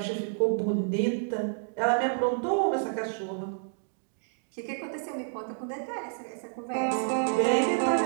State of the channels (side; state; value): left; silent; digital silence